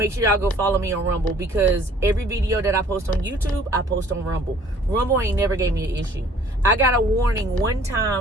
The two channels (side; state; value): both; normal; correlation 0.55